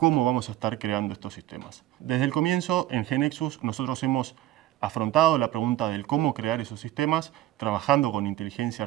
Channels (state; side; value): quieter; left; 14.5 dB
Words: vamos a estar creando estos sistemas. Desde el comienzo, en GeneXus, nosotros hemos afrontado la pregunta del cómo crear esos sistemas, trabajando con inteligencia